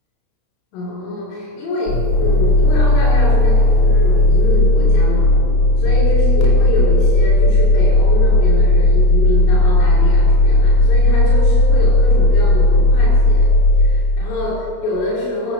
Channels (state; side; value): late; right; 33 ms